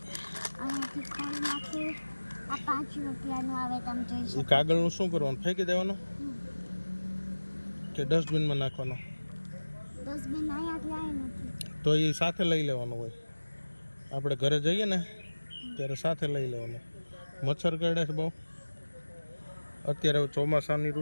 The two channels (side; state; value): both; inverted; correlation -1.00